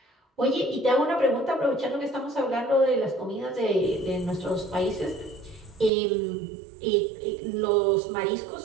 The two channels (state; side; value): drops out; left; at 5.9 s